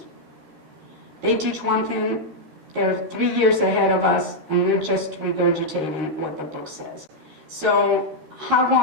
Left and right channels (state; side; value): late; left; 13 ms